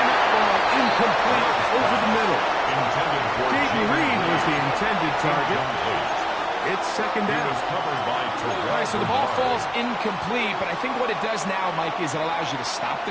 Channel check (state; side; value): identical; both; correlation 1.00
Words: that ball incomplete over the middle. Jaden Reed was the intended target. It's 2nd down. All right, so the ball falls incomplete, but I think what it does now, Mike, is it allows you to stop the